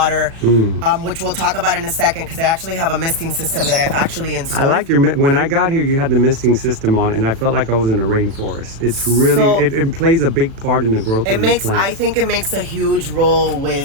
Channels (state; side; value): late; left; 36 ms